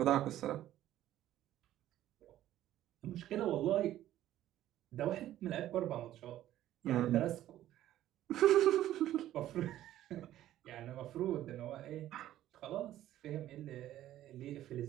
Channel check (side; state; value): left; quieter; 13.2 dB